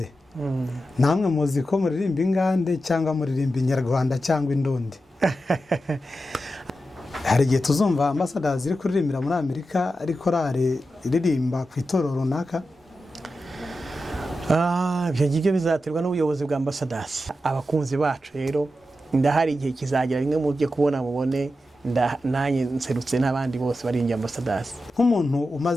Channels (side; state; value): both; normal; correlation 0.90